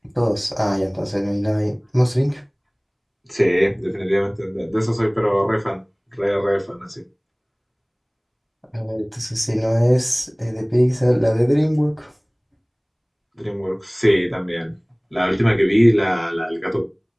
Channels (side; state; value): both; identical; correlation 1.00